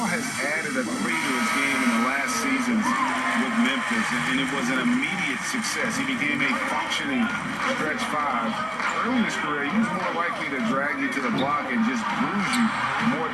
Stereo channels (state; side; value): identical; both; correlation 1.00